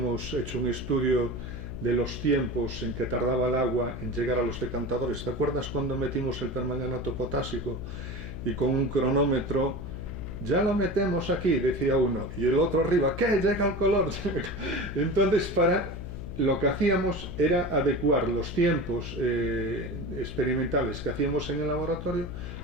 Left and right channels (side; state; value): left; noise; hum, 8 dB below the sound